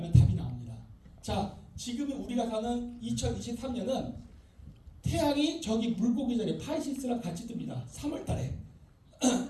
답이 나옵니다. 자, 지금 우리가 사는 2023년은 태양이 저기 물고기 자리에 파이시스랑 같이 뜹니다. 3월달에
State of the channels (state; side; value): identical; both; correlation 1.00